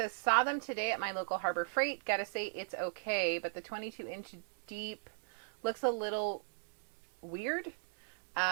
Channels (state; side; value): silent; left; digital silence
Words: saw them today at my local Harbor Freight. Gotta say, it's okay, but the 22-inch deep looks a little weird.